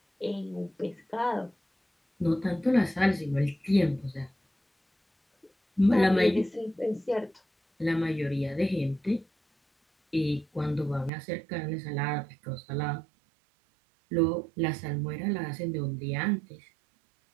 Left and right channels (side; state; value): left; drops out; at 11.1 s